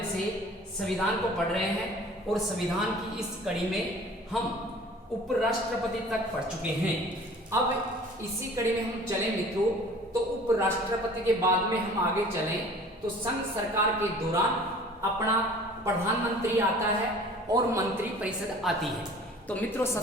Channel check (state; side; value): normal; both; correlation 0.47